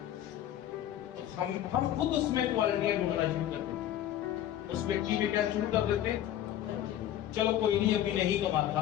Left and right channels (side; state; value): right; quieter; 11.8 dB